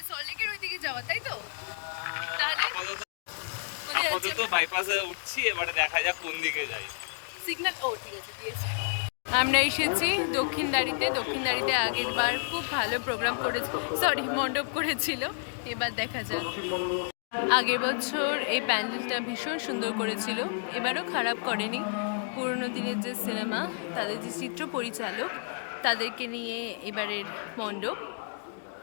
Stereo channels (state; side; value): silent; right; digital silence